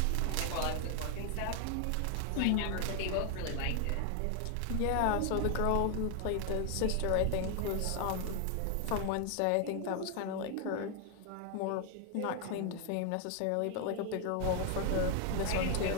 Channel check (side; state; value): both; different; correlation 0.00